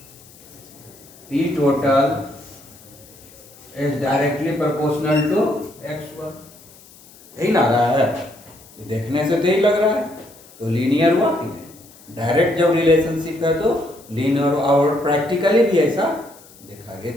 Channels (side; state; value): left; noise; hiss, 23 dB below the sound